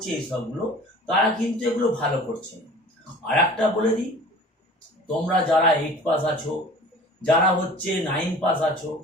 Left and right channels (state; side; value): normal; both; correlation 0.44